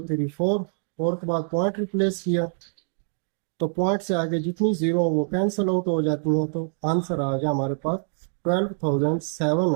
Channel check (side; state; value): left; silent; digital silence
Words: 3 4, 4 के बाद पॉइंट रिप्लेस किया तो पॉइंट से आगे जितनी जीरो वो कैंसिल आउट हो जाती हैं, तो आंसर आ गया हमारे पास